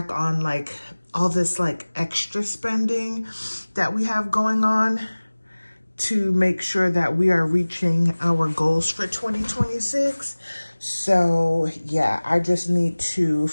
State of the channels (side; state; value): both; inverted; correlation -1.00